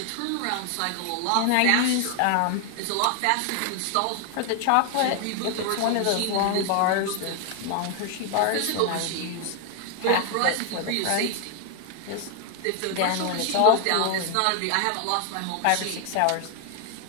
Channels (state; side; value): different; both; correlation 0.00